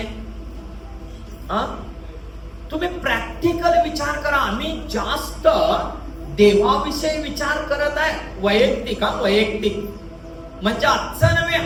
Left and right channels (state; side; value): identical; both; correlation 1.00